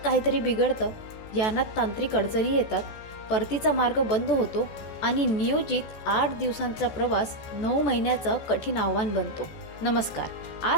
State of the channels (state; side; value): late; right; 14 ms